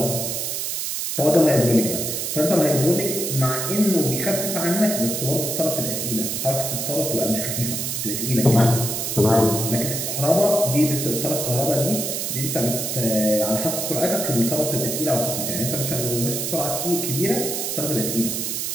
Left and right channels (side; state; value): right; noise; hiss, 2 dB below the sound